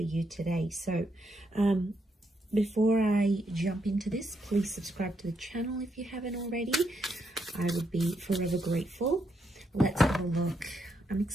you today. So before I jump into this, please subscribe to the channel if you haven't already. I would be forever grateful. Let's have a look. I'm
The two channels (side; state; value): both; normal; correlation 0.78